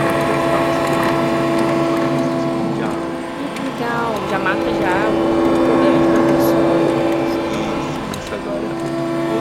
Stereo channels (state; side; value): identical; both; correlation 1.00